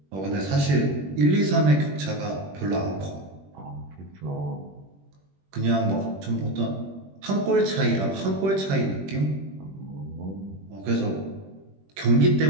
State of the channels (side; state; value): left; late; 21 ms